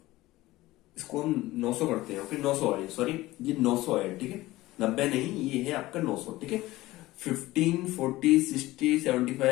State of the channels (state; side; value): quieter; right; 17.9 dB